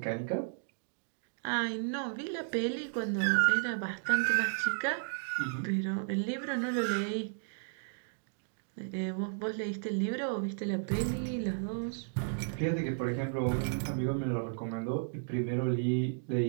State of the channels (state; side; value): silent; left; digital silence